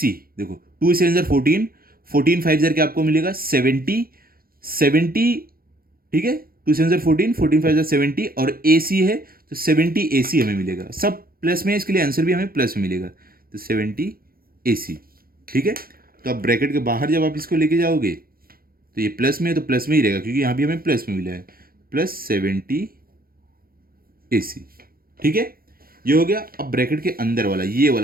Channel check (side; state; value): left; late; 0.43 ms